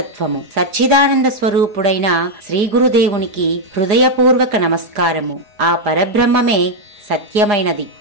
సచ్చిదానంద స్వరూపుడైన శ్రీ గురుదేవునికి హృదయపూర్వక నమస్కారము. ఆ పరబ్రహ్మమే సత్యమైనది.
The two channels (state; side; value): late; left; 4.9 ms